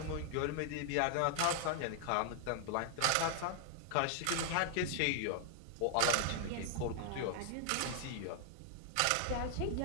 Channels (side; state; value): both; different; correlation 0.00